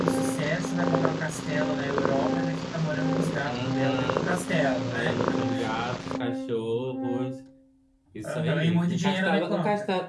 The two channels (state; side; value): identical; both; correlation 1.00